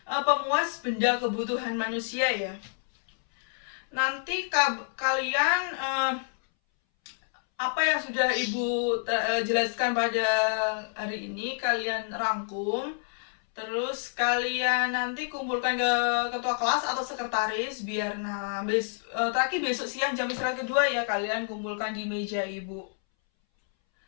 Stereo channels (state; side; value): silent; right; 59 dB below the other